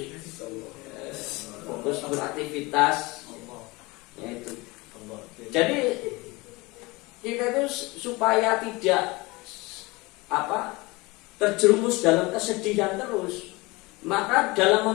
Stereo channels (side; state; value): right; quieter; 23.6 dB